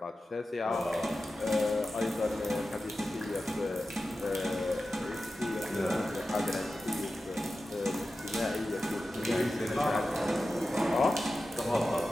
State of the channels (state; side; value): normal; both; correlation 0.93